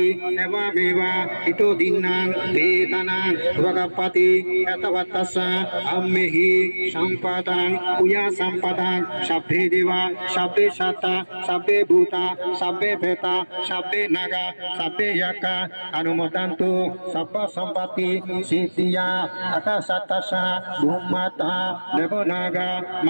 eva meva ito dinnang vedanang ragapati yatavatasa ammehi sampadang uya sampadang sabbe deva sabbe sata sabbe bhuta sabbe beta sabbe naga sabbe yaka anumodantu sabba sampati siddhiya Akasatasa Bhumata Devonaga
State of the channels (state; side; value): inverted; both; correlation -1.00